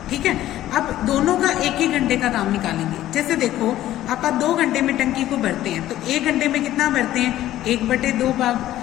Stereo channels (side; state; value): right; quieter; 13.7 dB